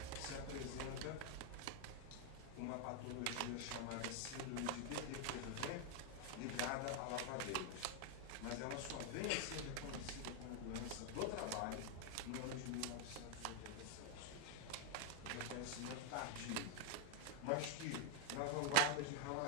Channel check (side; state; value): both; different; correlation 0.00